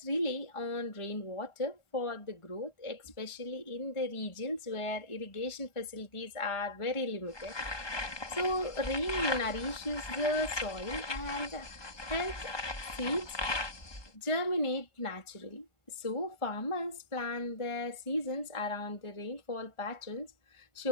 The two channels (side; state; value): right; late; 1.4 ms